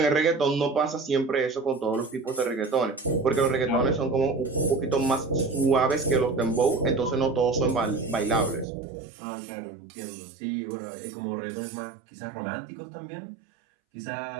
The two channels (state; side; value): drops out; left; at 8.7 s